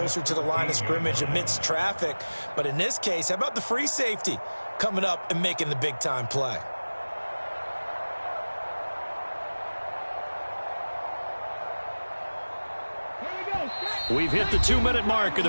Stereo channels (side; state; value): both; inverted; correlation -1.00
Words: to the line of scrimmage amidst traffic. But in this case, how about the free safety coming up and making the big-time play? We've hit the 2-minute mark of